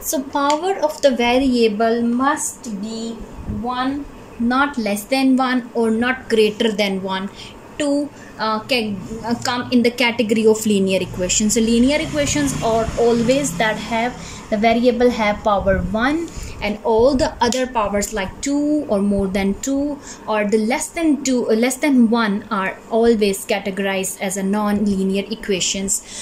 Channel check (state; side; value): identical; both; correlation 1.00